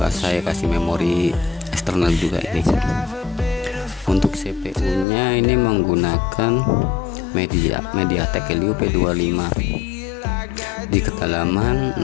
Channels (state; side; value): drops out; right; at 5.1 s